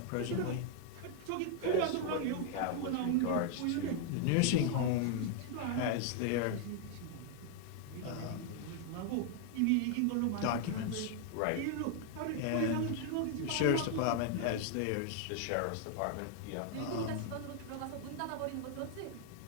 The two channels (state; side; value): different; both; correlation 0.00